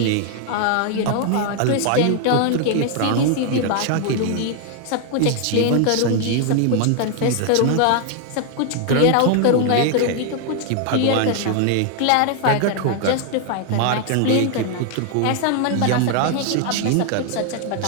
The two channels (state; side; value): different; both; correlation 0.00